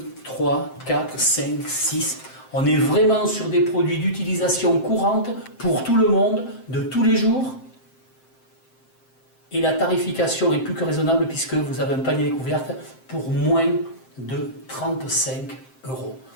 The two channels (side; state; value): right; late; 7.7 ms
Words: 3, 4, 5, 6, on est vraiment sur des produits d'utilisation courante pour tout le monde, de tous les jours. Et la tarification est plus que raisonnable puisque vous avez un panier découverte pour moins de 35 €.